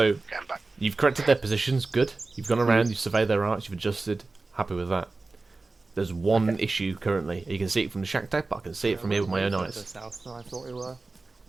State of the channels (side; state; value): left; quieter; 3.5 dB